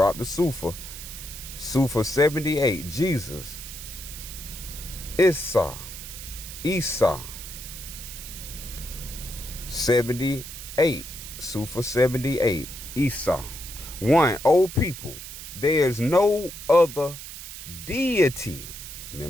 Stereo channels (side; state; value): right; noise; hiss, 11 dB below the sound